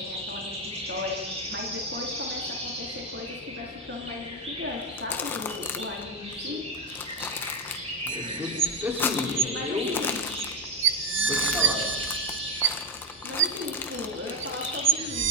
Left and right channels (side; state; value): both; normal; correlation 0.10